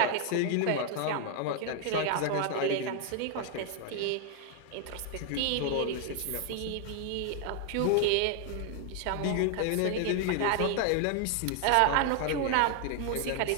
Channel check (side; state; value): both; different; correlation 0.00